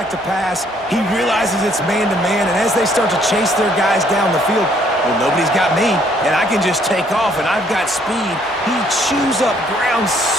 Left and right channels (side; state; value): both; normal; correlation 0.65